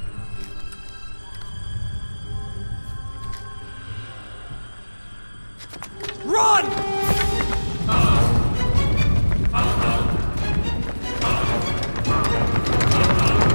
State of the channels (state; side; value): inverted; both; correlation -1.00